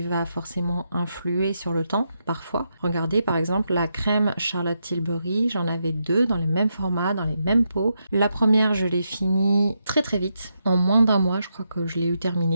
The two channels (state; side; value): inverted; both; correlation -0.83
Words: va forcément influer sur le temps, parfois. Regardez, par exemple, la crème Charlotte Tilbury, j'en avais 2 dans les mêmes formats, dans les mêmes pots. La première, je l'ai finie très très vite, en moins d'1 mois, je crois que je l'ai eu